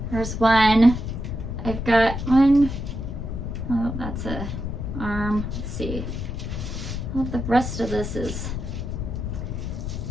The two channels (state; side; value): noise; left; rumble, 4 dB below the sound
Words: There's one. I've got one. Oh, that's a arm. Let's see. Well, the rest of this is,